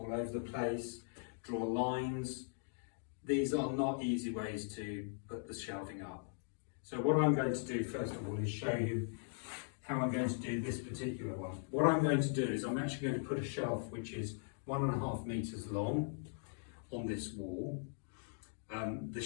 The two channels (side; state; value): right; silent; digital silence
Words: over the place, draw lines. These are not easy ways to put the shelving up. So what I'm going to do first of all is show you how I'm going to do this particular one. What I'm going to do is I'm actually going to put a shelf which is 1.5 meters long on this wall. The